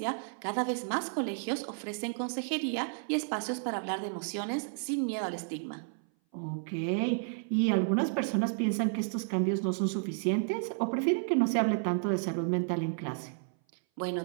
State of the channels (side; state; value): left; silent; 57 dB below the other